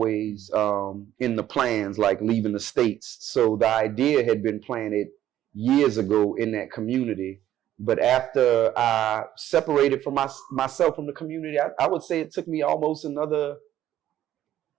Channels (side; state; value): left; quieter; 12.3 dB